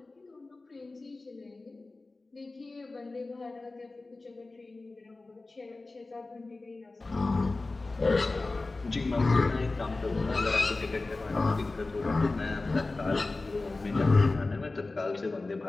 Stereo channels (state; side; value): quieter; right; 3.4 dB